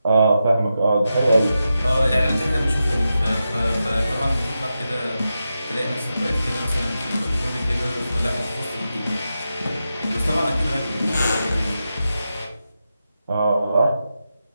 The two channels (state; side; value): inverted; both; correlation -0.89